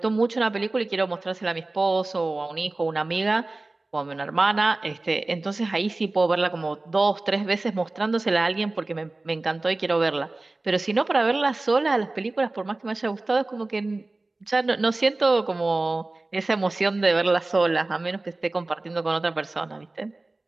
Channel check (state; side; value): quieter; left; 3.1 dB